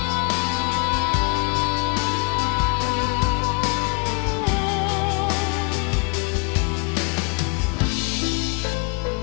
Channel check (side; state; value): right; quieter; 31.8 dB